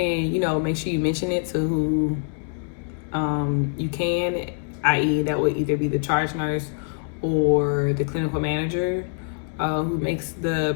know, make sure you mention it to who you can, i.e. that would either be the charge nurse or the clinical manager who makes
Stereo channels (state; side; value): silent; right; digital silence